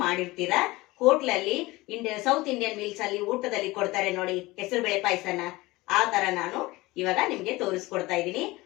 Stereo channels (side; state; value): right; quieter; 20.6 dB